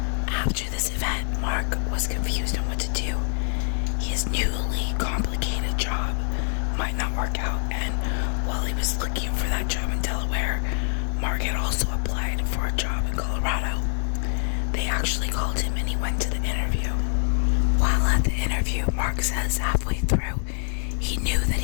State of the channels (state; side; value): silent; right; 62 dB below the other